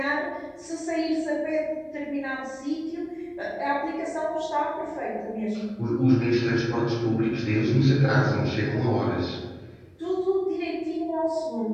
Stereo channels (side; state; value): both; identical; correlation 1.00